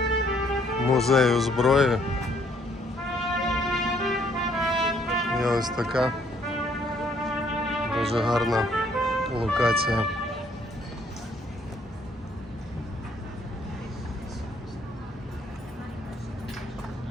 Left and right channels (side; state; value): both; normal; correlation 0.66